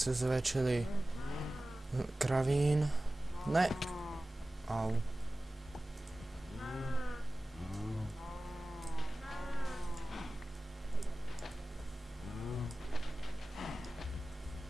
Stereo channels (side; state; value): both; normal; correlation 0.97